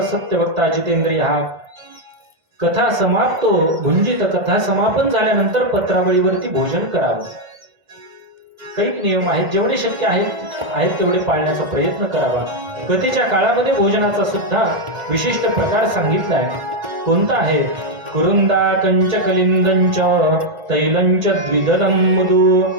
सत्य वक्ता जितेंद्रिय. हा कथा समाप्तो भुंजित. कथा समापन झाल्यानंतर पत्रावळीवरती भोजन करावं. काही नियम आहेत. जेवढे शक्य आहेत तेवढे पाळण्याचा प्रयत्न करावा. गतीच्या काळामध्ये भोजनाचा सुद्धा विशिष्ट प्रकार सांगितलाय. कोणता आहे? कुरुंदा कंच कलिंदंच तैलंच द्विदलं मुदु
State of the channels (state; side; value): late; left; 1.5 ms